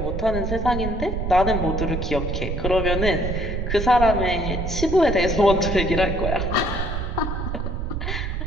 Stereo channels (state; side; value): noise; right; rumble, 2 dB below the sound